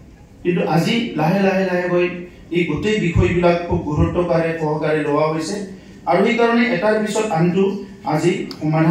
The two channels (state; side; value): identical; both; correlation 1.00